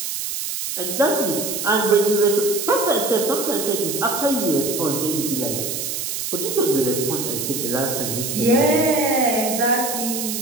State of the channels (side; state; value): right; noise; hiss, 4 dB below the sound